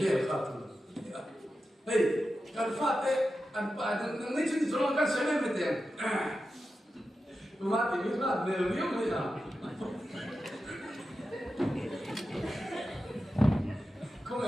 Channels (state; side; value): normal; both; correlation 0.91